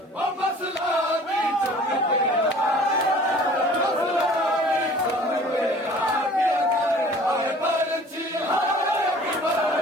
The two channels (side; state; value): both; normal; correlation 0.49